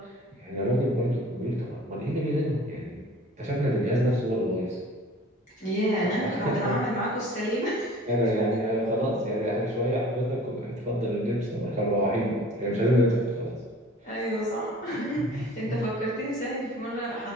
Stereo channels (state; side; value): normal; both; correlation 0.46